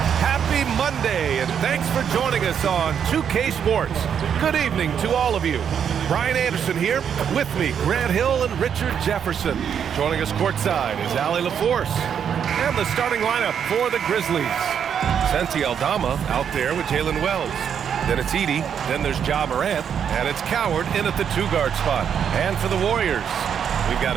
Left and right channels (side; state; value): left; quieter; 8.0 dB